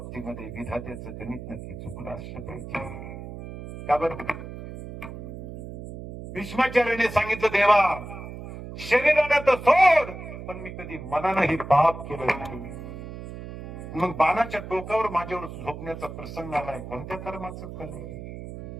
विधात्याचं गणित नक्की चुकलं असलं पाहिजे. का बरं? भीष्माचार्याने सांगितलं देवा शरीराने तर सोड, पण मी कधी मनानंही पाप केलं नाही. मग बाणाच्या टोकावर माझ्यावर झोपण्याचा प्रसंग आलाय, कोणत्या कर्माचं फल आहे?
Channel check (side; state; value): right; noise; hum, 11 dB below the sound